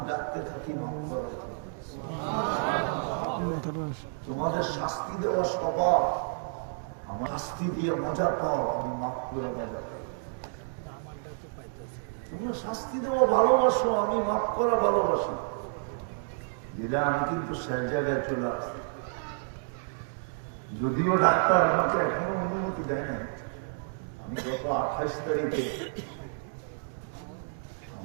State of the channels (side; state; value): left; silent; digital silence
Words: ডাকতে থাকি মাফ করার জন্য। তোমাদের শাস্তি দেওয়া স্বভাব, আমার শাস্তি দিয়ে মজা পাও, আমি মাফ করে মজা পাই। তুমি শাস্তি দেওয়া ভালোবাসো, আমি মাফ করা ভালোবাসি। যেটা আমি কিন্তু সেই জায়গায় চলে আসছি। যদিও ডাক্তার আমাকে এখনো অনুমতি দেয় না। আমি গত 28 তারিখে